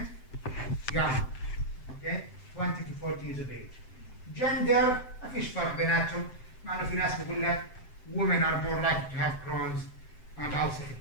young. Okay? 20 to 40 years of age. Gender, ما فيش فرق بيناتهم. مع إنه في ناس بيقول لك women are more likely to have Crohn's and ulcerative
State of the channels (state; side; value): late; right; 7.8 ms